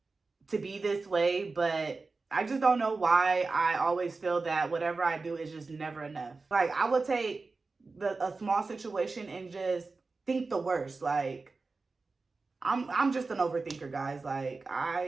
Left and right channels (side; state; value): left; quieter; 3.9 dB